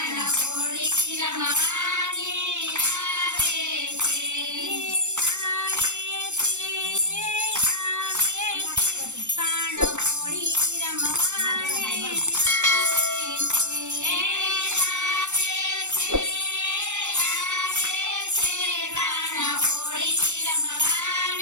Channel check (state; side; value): late; left; 0.84 ms